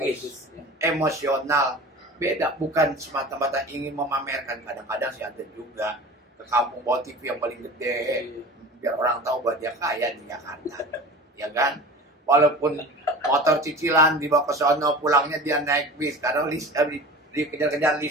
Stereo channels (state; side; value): normal; both; correlation 0.37